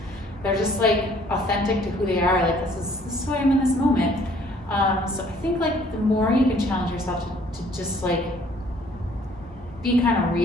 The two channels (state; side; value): normal; both; correlation 0.59